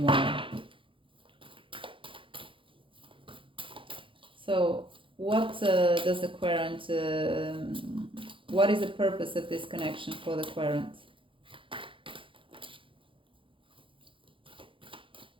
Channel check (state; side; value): late; left; 0.25 ms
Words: So what does the querent, what is the purpose of this connection for the querent?